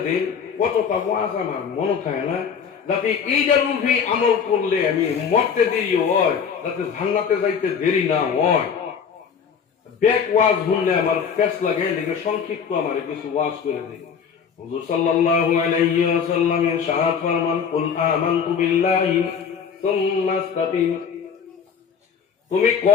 দিন, কতটা ওয়াজ আমার মনে থাকে না, যাতে এইটার উপরে আমল করলে আমি মরতে দেরি হয়, যাতে জান্নাতে যাইতে দেরি না হয়। ব্যাক ওয়াজ শুনলে আমার পেস লাগে, লিখে সংক্ষিপ্ত আমারে কিছু ওয়াজ করে দিন। হুজুর সাল্লাল্লাহু আলাইহি ওয়াসাল্লাম ইরশাদ ফরমান, কুল আমানতু বিল্লাহি সুম্মা ইসতাকিম, তুমি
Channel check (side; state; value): right; quieter; 6.8 dB